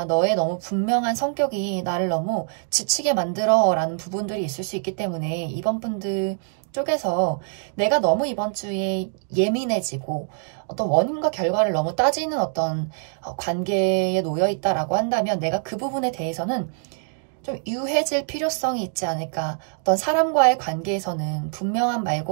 너의 너무 분명한 성격이 나를 너무 지치게 만들어 라는 부분들이 있을 수 있기 때문에 이번 분들 쪽에서 내가 너무 이번 주에 예민해지고 어떤 원인과 결과를 너무 따지는 어떤 관계에 놓여 있다라고 한다면 내가 그 부분에 대해서는 좀 유해질 필요성이 있지 않을까. 어떤 사람과의 관계에서는 분명함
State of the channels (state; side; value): silent; left; digital silence